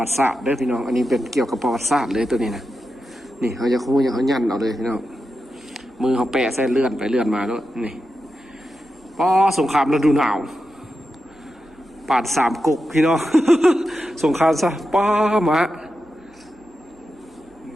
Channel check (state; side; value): normal; both; correlation 0.89